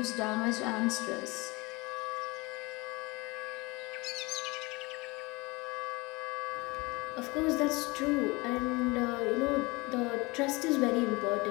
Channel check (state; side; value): quieter; right; 24.7 dB